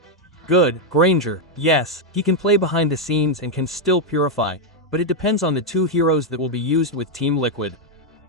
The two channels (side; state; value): both; normal; correlation 0.01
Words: Good, Granger, yes. He can play behind the scenes and can still purify, but it depends on the 2 heroes that will be used with Team Liquid.